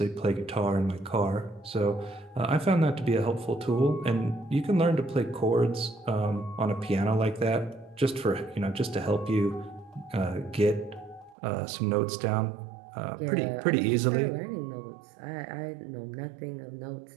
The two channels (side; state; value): left; drops out; at 11.4 s